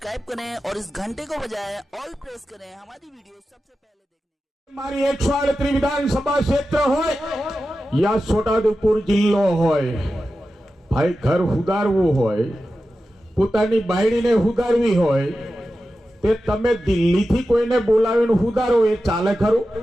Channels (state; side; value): normal; both; correlation 0.92